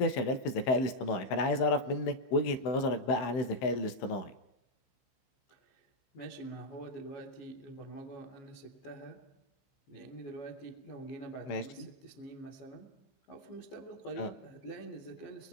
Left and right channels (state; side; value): late; right; 16 ms